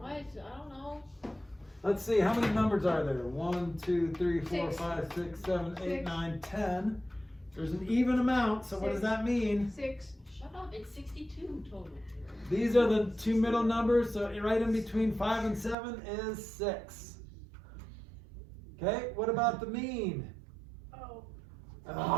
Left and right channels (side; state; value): left; drops out; at 15.8 s